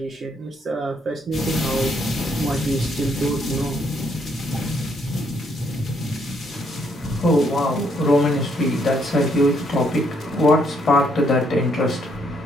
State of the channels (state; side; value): normal; both; correlation 0.72